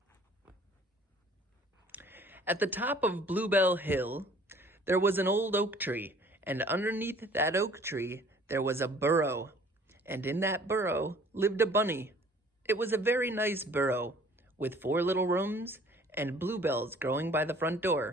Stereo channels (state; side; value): normal; both; correlation 0.53